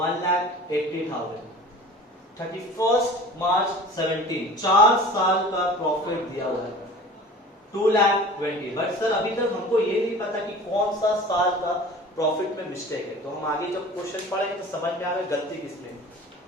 31 मार्च 17, 4 साल का प्रॉफिट दिया हुआ है 2,20,000। बट सर अभी तक हमको ये नहीं पता कि कौन सा साल का प्रॉफिट में मिस्टेक है। तो हम आगे जब क्वेश्चन पढ़ेंगे तो समझ में आएगा गलती किसमें।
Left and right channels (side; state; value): both; normal; correlation 0.41